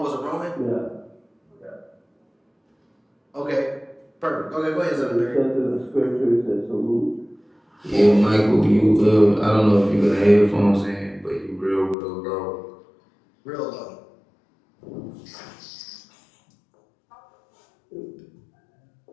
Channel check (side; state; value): right; drops out; at 12.0 s